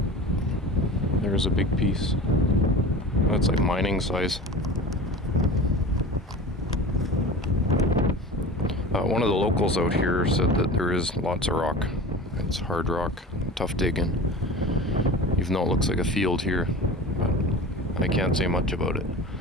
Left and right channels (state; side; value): normal; both; correlation 0.35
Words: There's a big piece. That's like mining size. One of the locals out here said that there is lots of rock. It's hard rock, tough digging. Even though it looks like a field here, but I can't say much about it.